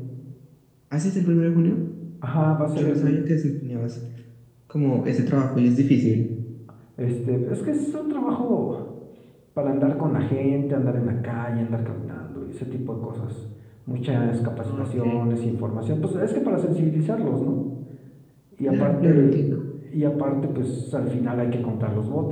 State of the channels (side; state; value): both; identical; correlation 1.00